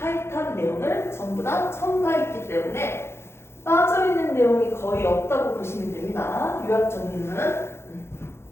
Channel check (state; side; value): late; right; 0.12 ms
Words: 내용을 전부 다 첨가했기 때문에 빠져있는 내용이 거의 없다고 보시면 됩니다. 요약 정리는.